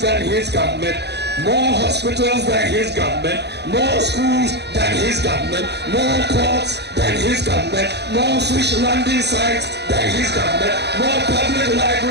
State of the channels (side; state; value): left; late; 0.49 ms